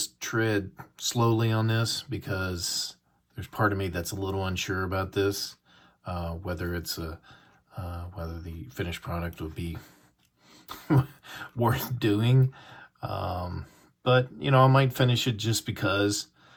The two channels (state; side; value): identical; both; correlation 1.00